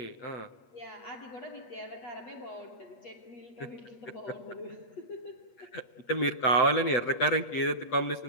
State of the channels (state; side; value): late; right; 8.4 ms